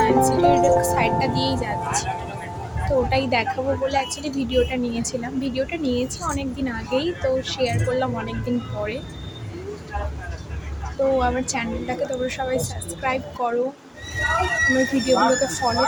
সিটির সাইডটা দিয়েই যাচ্ছি। তো ওটাই দেখাবো বলে অ্যাকচুয়ালি ভিডিওটা নিয়েছিলাম। ভিডিওটা নিয়েছি অনেক দিন আগেই, তো শেয়ার করলাম অনেক দিন পরে। তো আমার চ্যানেলটাকে তোমরা সবাই সাবস্ক্রাইব করো, আমার ভিডিওগুলোকে ফলো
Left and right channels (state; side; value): identical; both; correlation 1.00